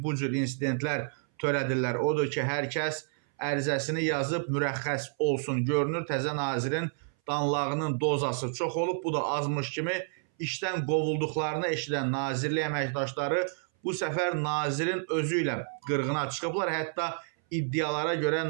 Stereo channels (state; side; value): silent; left; 58 dB below the other